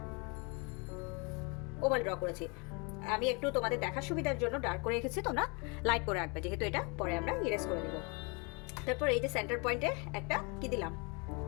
ওভাল ড্র করেছি। আমি একটু তোমাদের দেখার সুবিধার জন্য ডার্ক করে রেখেছি, তোমরা লাইট করে রাখবে, যেহেতু এটা পরে আমরা ইরেজ করে দেব। তারপর এই যে সেন্টার পয়েন্টে একটা কি দিলাম,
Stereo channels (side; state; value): right; quieter; 31.1 dB